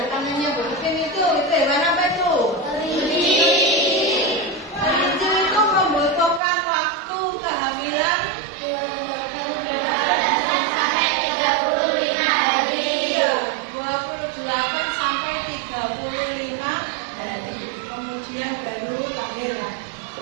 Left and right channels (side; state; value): left; drops out; at 6.4 s